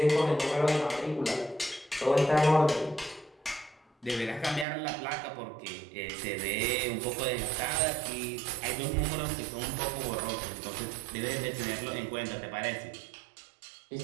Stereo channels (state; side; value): drops out; left; at 4.7 s